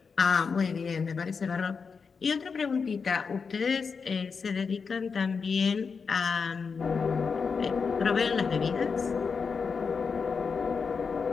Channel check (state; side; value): quieter; right; 5.4 dB